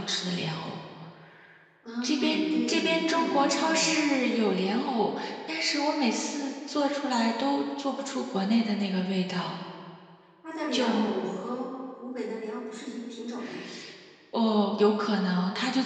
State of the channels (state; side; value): identical; both; correlation 1.00